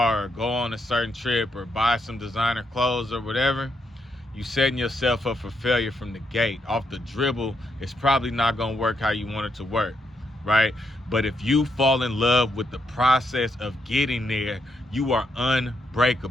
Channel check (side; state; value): both; normal; correlation 0.79